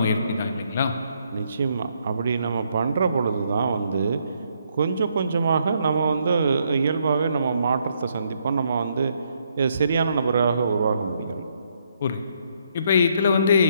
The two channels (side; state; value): both; inverted; correlation -0.73